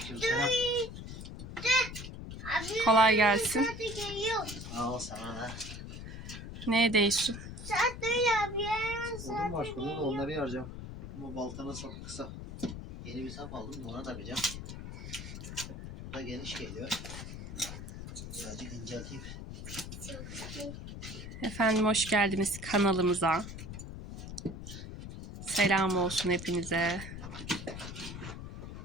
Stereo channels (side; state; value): left; noise; rumble, 9 dB below the sound